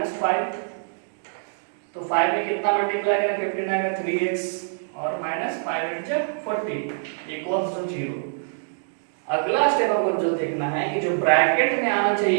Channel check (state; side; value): silent; left; digital silence